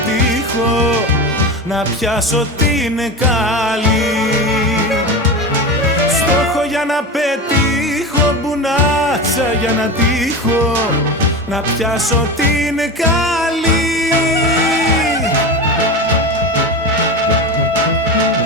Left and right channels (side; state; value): both; normal; correlation 0.24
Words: να πιάσω την καλή. Στόχο για να πετύχω, μπουνάτσα για να τύχω, να πιάσω την καλή.